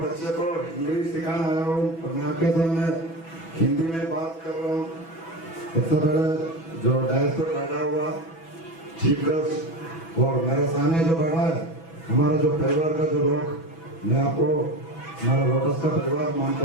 को इंग्लिश सिखाना आया हूँ और मैं आपके सामने हिंदी में बात कर रहा हूँ। सबसे पहले जो डायस पर बैठा हुआ चीफ गेस्ट और मेरे सामने जो बैठा है हमारा जो परिवार का जो लोग, मैं आपको हमारा लोटस का परिवार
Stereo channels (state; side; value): late; right; 6.1 ms